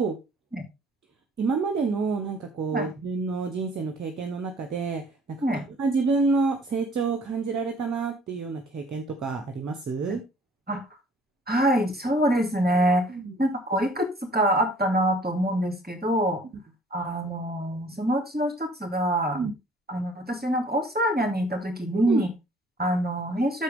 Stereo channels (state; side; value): normal; both; correlation 0.55